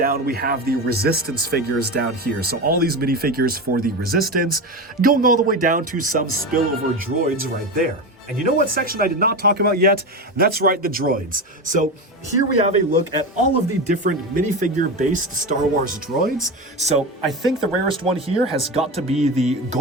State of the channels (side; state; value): both; normal; correlation 0.21